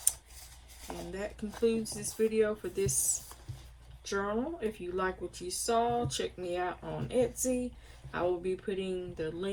And that concludes this video for this journal. If you like what you saw, check me out on Etsy. I will be putting the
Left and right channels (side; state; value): both; identical; correlation 1.00